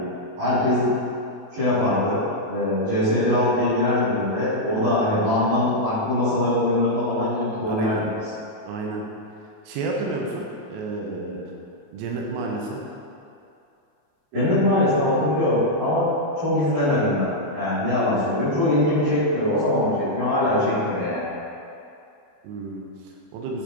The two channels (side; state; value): left; late; 28 ms